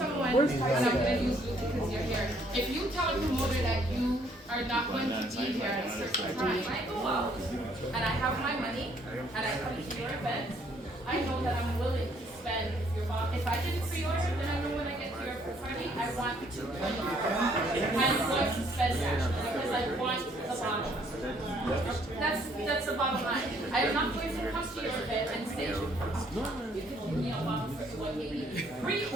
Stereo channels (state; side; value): normal; both; correlation 0.65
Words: and I'm going to use you because you're here, if you tell a promoter that you are not going to be here at a certain time, I go out and I have my money and I come to your event, I know that I'm willing to spend. If I didn't pre-order, then I know when I get to your party, I want to $220. I'm going to spend that because I want the bottle. That's the bottom line. I am not going to come to your event and say you can give me a bottle for $180.